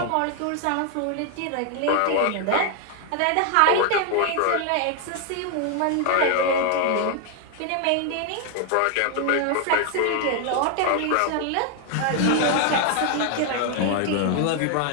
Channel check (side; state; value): both; different; correlation 0.00